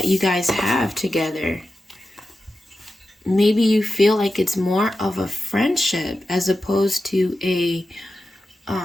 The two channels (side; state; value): both; normal; correlation 0.92